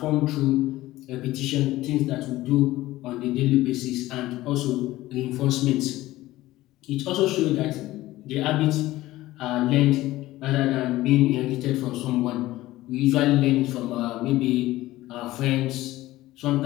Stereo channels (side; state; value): right; quieter; 16.8 dB